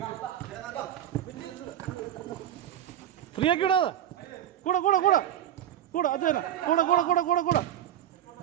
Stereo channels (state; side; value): quieter; left; 11.0 dB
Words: ഫ്രീ ആക്കി വിടാതെ കൂടെ അത് തന്നെ കൂടെ